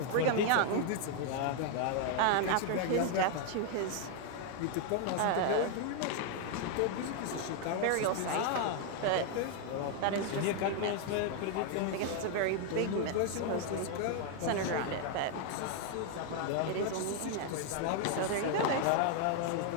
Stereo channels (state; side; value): different; both; correlation 0.00